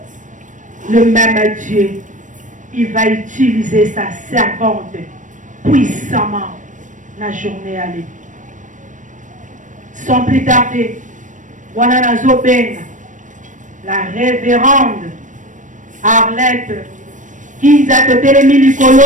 Le même Dieu, il va utiliser sa servante puissamment la journée à lui. Sans plus tarder, wana nazo benga la révérende Arlette Kinza Totelemi Likolo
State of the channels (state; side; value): late; left; 0.37 ms